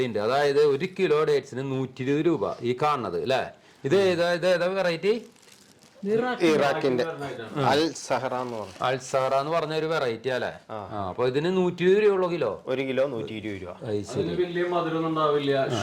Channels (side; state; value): both; identical; correlation 1.00